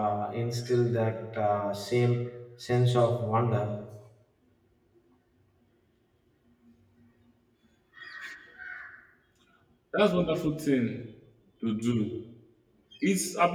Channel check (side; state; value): both; identical; correlation 1.00